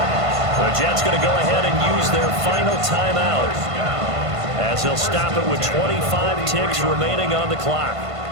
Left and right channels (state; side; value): late; left; 1.5 ms